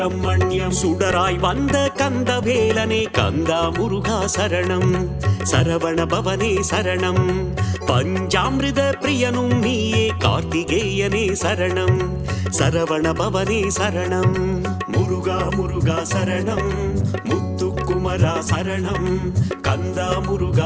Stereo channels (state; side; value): identical; both; correlation 1.00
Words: சுடராய் வந்த கந்த வேலனே கந்தா முருகா சரணம், சரவண பவனே சரணம். பஞ்சாமிருத பிரியனும் நீயே கார்த்திகேயனே சரணம், சரவண பவனே சரணம். முருகா முருகா சரணம், முத்துக்குமரா சரணம், கந்தா